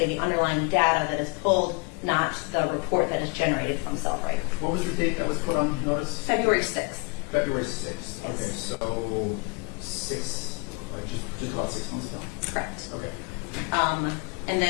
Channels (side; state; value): right; quieter; 30.7 dB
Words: the underlying data that is pulled, not the report that is generated from Cellbrite. What was the date that was put on notice? February 6th. February 6th. Okay, Yes. so just about 6 months ago? Correct. Okay. And